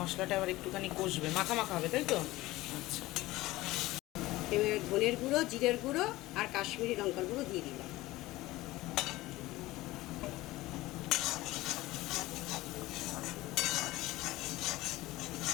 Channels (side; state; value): right; quieter; 18.3 dB